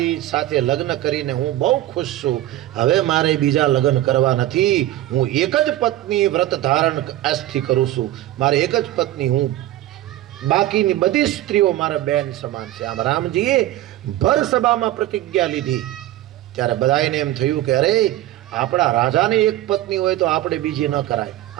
સાથે લગ્ન કરીને હું બહુ ખુશ છું. હવે મારે બીજા લગ્ન કરવા નથી. હું એક જ પત્ની વ્રત ધારણ આજથી કરું છું. મારે એક જ પત્ની, હું બાકીની બધી સ્ત્રીઓ મારા બેન સમાન છે. આમ રામજીએ ભર સભામાં પ્રતિજ્ઞા લીધી ત્યારે બધાને એમ થયું કે અરે આપણા રાજાને એક પત્ની હોય તો આપણે બીજી ન કરાય.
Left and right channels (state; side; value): quieter; left; 14.8 dB